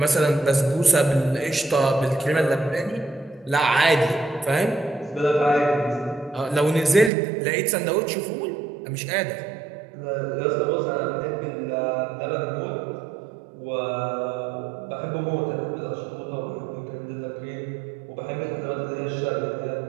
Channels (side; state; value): left; drops out; at 7.1 s